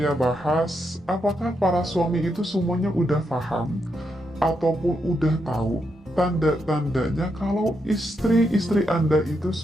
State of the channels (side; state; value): both; normal; correlation 0.82